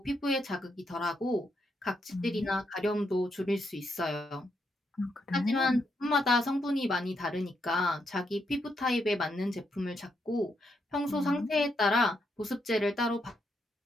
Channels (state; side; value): normal; both; correlation 0.79